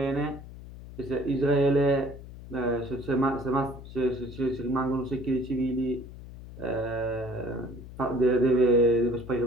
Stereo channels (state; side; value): noise; left; hum, 15 dB below the sound